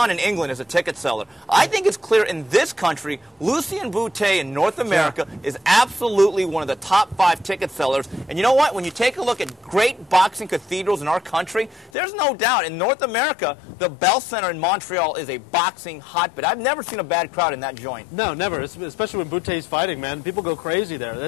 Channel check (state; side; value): drops out; right; at 11.9 s